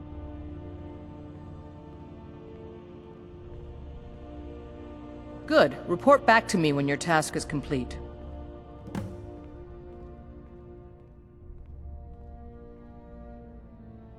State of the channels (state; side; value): identical; both; correlation 1.00